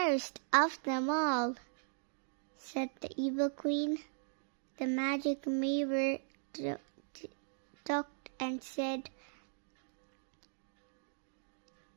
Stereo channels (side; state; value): left; silent; digital silence